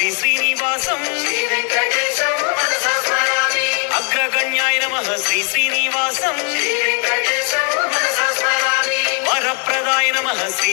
శ్రీనివాసం శ్రీ వెంకటేశం మనసా స్మరామి అగ్రగణ్యాయ నమః శ్రీ శ్రీనివాసం శ్రీ వెంకటేశం మనసా స్మరామి వరప్రదాయ నమః శ్రీ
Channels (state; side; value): quieter; right; 39.3 dB